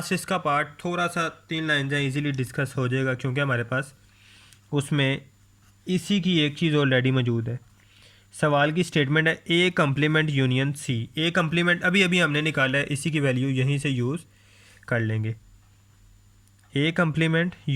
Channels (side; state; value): both; identical; correlation 1.00